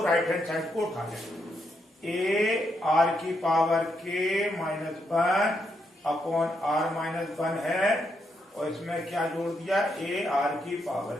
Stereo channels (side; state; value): both; normal; correlation 0.79